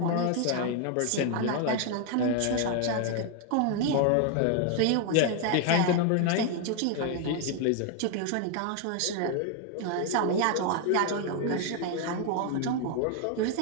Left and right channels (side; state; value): both; different; correlation 0.00